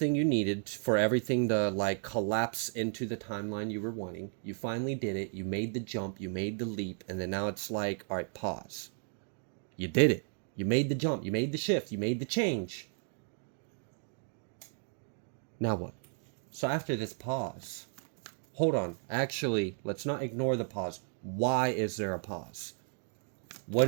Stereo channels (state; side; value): silent; left; 55 dB below the other